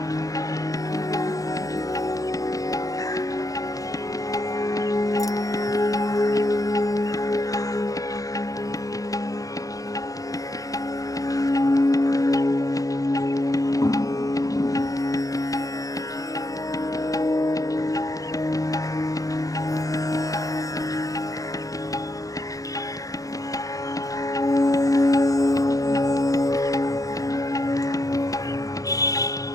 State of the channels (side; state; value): right; late; 0.17 ms